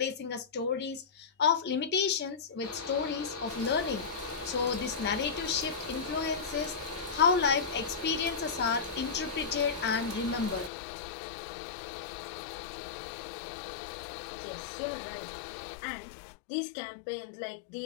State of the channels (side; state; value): right; drops out; at 10.7 s